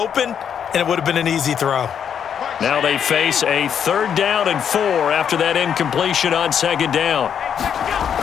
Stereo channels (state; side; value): quieter; right; 8.2 dB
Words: and it would have been an easy throw. Now they face a 3rd down and 4 after that incompletion on 2nd down.